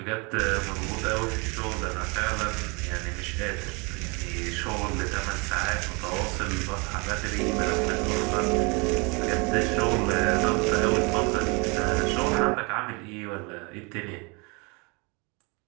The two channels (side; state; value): left; quieter; 29.9 dB